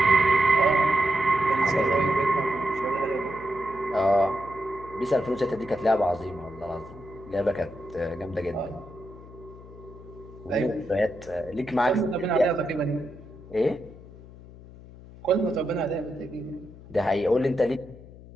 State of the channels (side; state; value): left; noise; hum, 18 dB below the sound